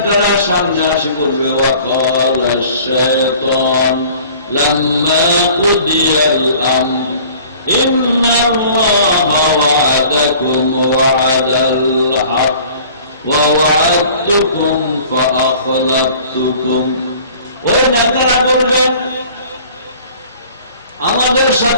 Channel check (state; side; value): inverted; both; correlation -0.49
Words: সামনে আসে বলবে, ওয়াকাল আশ-শায়তান লাম্মা কুদিয়াল আমর ইন্নাল্লাহা ওয়া'আদাকুম ওয়া'দাল হক ওয়া ওয়া'আদতুকুম ফাআখলাফতুকুম। ওই নেতারা বলবে আমাদের